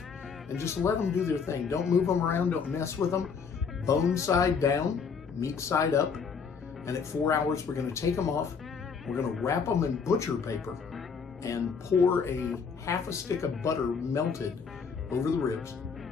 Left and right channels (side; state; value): right; quieter; 5.8 dB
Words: and just let them do their thing. Don't move them around. Don't mess with them. Bone side down, meat side up. And at 4 hours, we're going to take them off. We're going to wrap them in butcher paper and pour a half a stick of butter melted over the ribs.